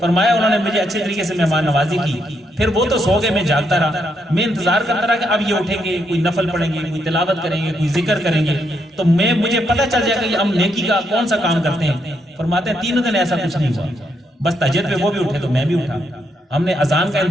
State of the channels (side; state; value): both; normal; correlation 0.77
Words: انہوں نے مجھے اچھے طریقے سے مہمان نوازی کی، پھر وہ تو سو گئے، میں جاگتا رہا، میں انتظار کرتا رہا کہ اب یہ اٹھیں گے، کوئی نفل پڑھیں گے، کوئی تلاوت کریں گے، کوئی ذکر کریں گے، تو مجھے پتہ چل جائے گا کہ ہم نیکی کا کون سا کام کرتے ہیں۔ فرماتے ہیں 3 دن ایسا کچھ نہیں ہوا، بس تہجد پہ وہ بھی اٹھے تو میں بھی اٹھا، ہم نے اذان کا